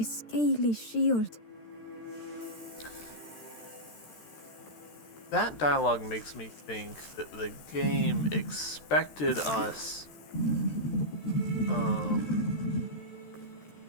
scaly shield. That dialogue makes me think that the game expected us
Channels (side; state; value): right; late; 13 ms